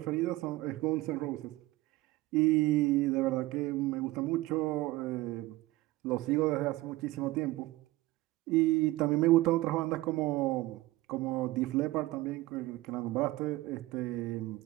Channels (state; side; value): quieter; left; 18.7 dB